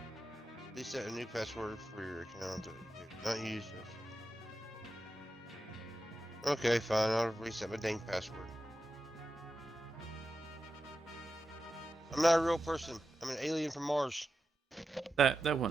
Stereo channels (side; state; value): both; normal; correlation 0.90